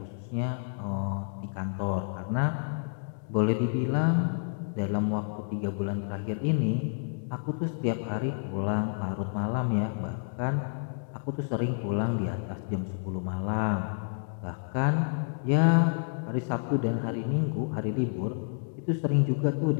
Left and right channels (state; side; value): silent; right; digital silence